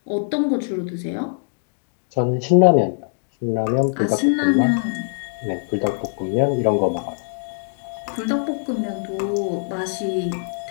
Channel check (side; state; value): right; silent; digital silence